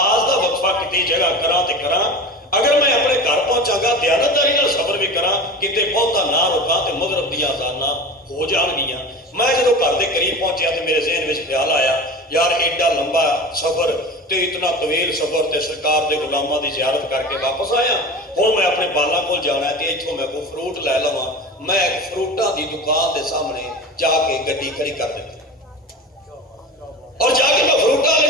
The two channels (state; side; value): normal; both; correlation 0.32